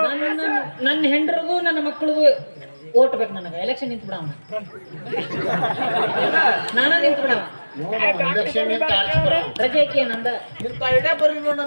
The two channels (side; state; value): both; inverted; correlation -1.00